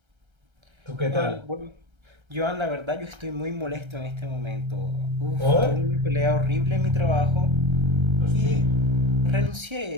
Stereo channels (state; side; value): late; left; 1.3 ms